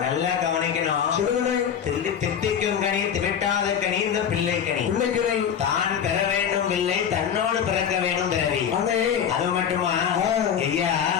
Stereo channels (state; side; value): quieter; right; 8.2 dB